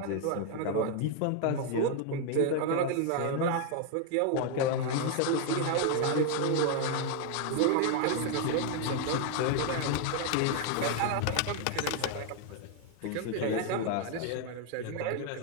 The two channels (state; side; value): different; both; correlation 0.01